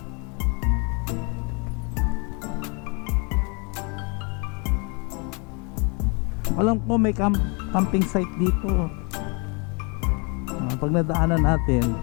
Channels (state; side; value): quieter; right; 33.1 dB